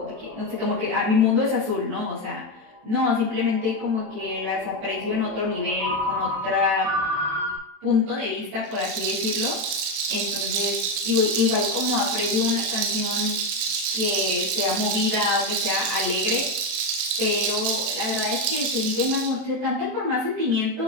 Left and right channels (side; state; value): left; late; 27 ms